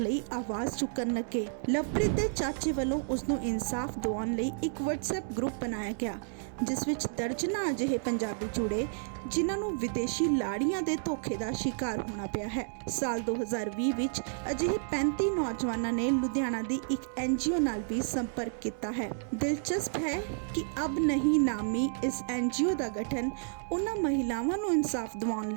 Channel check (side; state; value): left; silent; digital silence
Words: ਆਵਾਜ਼ ਚੁੱਕਣ ਲੱਗੇ। ਲਵਪ੍ਰੀਤ ਦੇ ਚਾਚੇ ਵੱਲੋਂ ਉਸ ਨੂੰ ਇਨਸਾਫ ਦਿਵਾਉਣ ਲਈ ਇੱਕ WhatsApp ਗਰੁੱਪ ਬਣਾਇਆ ਗਿਆ, ਜਿਸ ਵਿੱਚ ਦਰਜਨਾਂ ਅਜਿਹੇ ਪੰਜਾਬੀ ਜੁੜੇ ਜਿਨ੍ਹਾਂ ਨੂੰ ਵਿਦੇਸ਼ੀ ਲਾੜੀਆਂ ਦੇ ਧੋਖੇ ਦਾ ਸ਼ਿਕਾਰ ਹੋਣਾ ਪਿਆ ਹੈ। ਸਾਲ 2020 ਵਿੱਚ ਅਜਿਹੇ 35 ਨੌਜਵਾਨਾਂ ਨੇ ਲੁਧਿਆਣਾ ਦੀ ਇੱਕ NGO ਨਾਲ ਵੀ ਸੰਪਰਕ ਕੀਤਾ ਹੈ। ਦਿਲਚਸਪ ਹੈ ਕਿ ਅਬ ਨਹੀਂ ਨਾਮੀ ਇਸ NGO ਦਾ ਗਠਨ ਉਹਨਾਂ ਮਹਿਲਾਵਾਂ ਨੂੰ ਇਨਸਾਫ ਦਿਵਾਉਣ